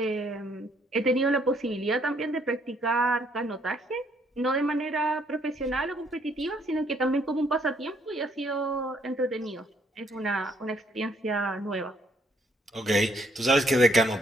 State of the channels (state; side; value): normal; both; correlation 0.68